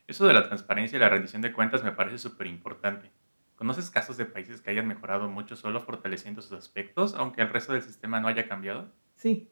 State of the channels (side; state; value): both; inverted; correlation -1.00